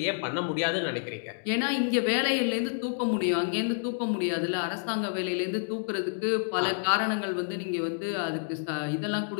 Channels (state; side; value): silent; right; digital silence